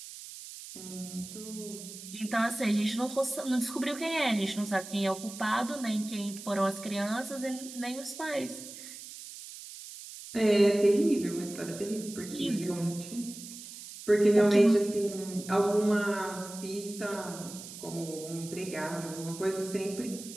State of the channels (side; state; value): right; noise; hiss, 13 dB below the sound